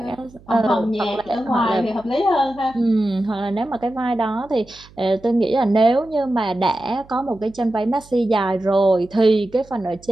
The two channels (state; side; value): noise; right; hum, 25 dB below the sound